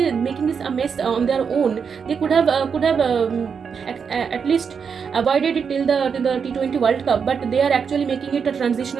a mess on their own. They could have at least avoided it till the T20 World Cup, but they are actually making it a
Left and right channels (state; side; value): quieter; left; 6.3 dB